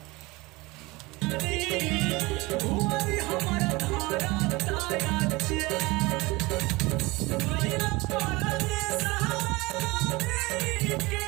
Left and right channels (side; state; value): left; quieter; 22.7 dB